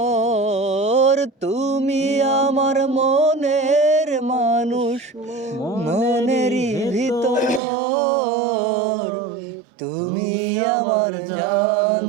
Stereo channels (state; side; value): drops out; left; at 7.6 s